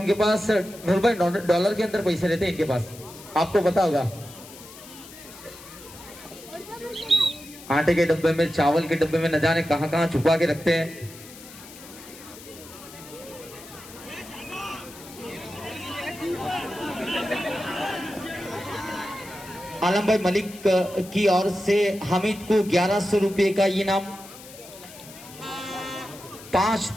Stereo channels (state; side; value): noise; left; hiss, 17 dB below the sound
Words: पास $100 के अंदर पैसे रहते हैं इनके पास, आपको पता होगा। आटे के डब्बे में, चावल के डब्बे में न जाने कहां कहां छुपा के रखते हैं। आलम भाई मलिक की ओर से हामिद को 1,100 रुपए का इनाम, 5,